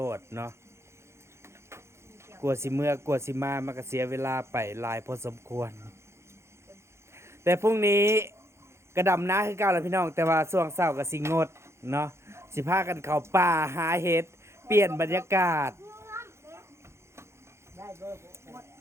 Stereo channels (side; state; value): left; late; 0.13 ms